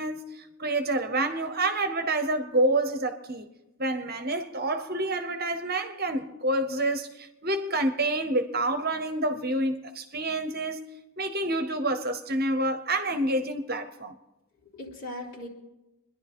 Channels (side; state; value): both; normal; correlation -0.01